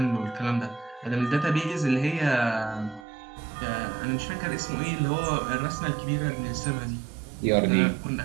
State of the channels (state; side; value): drops out; left; at 3.1 s